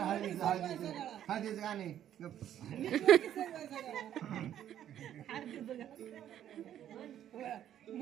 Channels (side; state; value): left; quieter; 10.9 dB